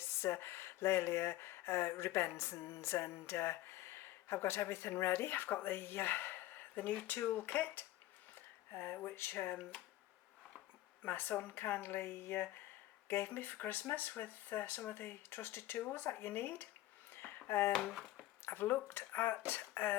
Laelia rubescens, and I've got everything ready. I've got the new tool kit which my son kindly gave me for Christmas with some of the trusted tools that you need. I've looked at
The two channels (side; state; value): right; quieter; 15.6 dB